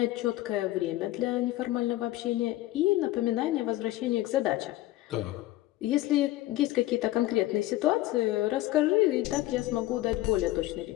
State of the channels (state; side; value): quieter; right; 16.4 dB